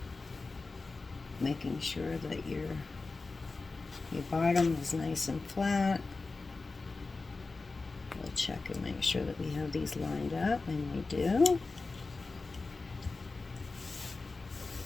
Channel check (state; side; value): quieter; right; 3.8 dB